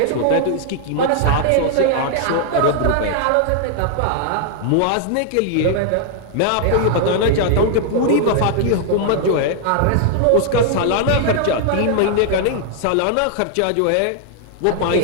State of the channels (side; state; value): both; different; correlation 0.00